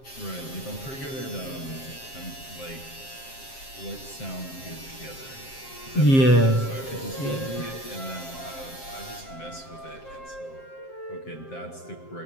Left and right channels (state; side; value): late; right; 7.5 ms